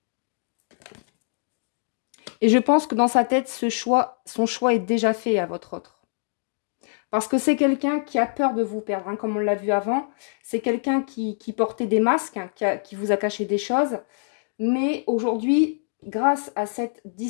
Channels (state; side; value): silent; right; digital silence